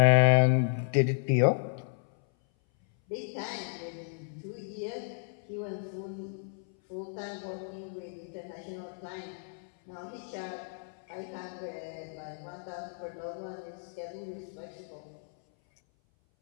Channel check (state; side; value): silent; right; 56 dB below the other